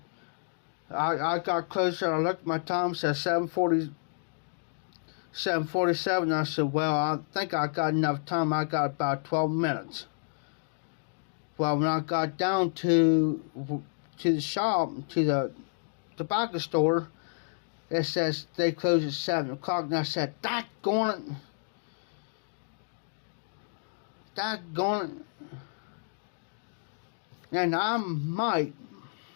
I got closer, I looked at my time, it said 7:47. I said, well, I think I got enough time. I got about 12 minutes. Well, when I got down to the shop, to the tobacco store, it says they close at 7 o'clock. And I said, daggone it. And I might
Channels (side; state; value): right; silent; digital silence